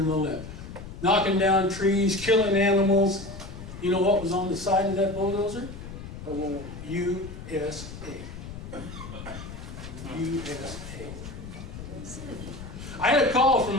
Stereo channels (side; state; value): left; noise; rumble, 11 dB below the sound